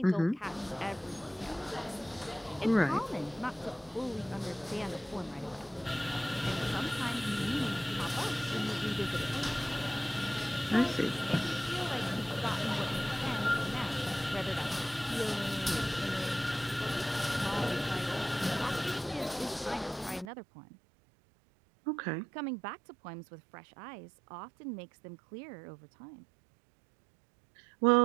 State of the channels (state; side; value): drops out; left; at 20.2 s